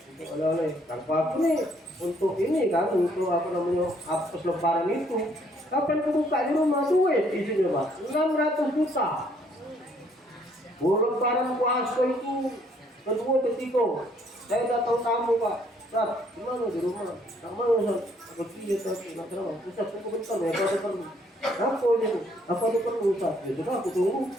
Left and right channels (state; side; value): normal; both; correlation 0.66